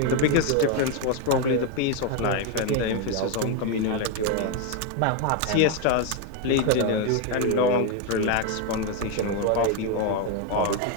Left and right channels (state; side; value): different; both; correlation 0.02